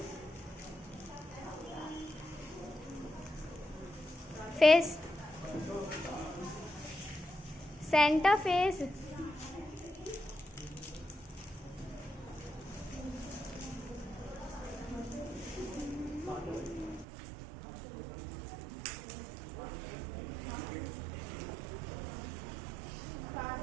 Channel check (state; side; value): drops out; left; at 17.1 s